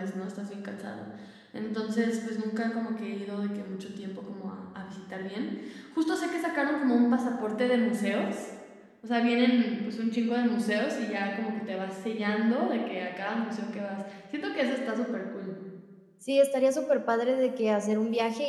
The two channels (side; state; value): both; identical; correlation 1.00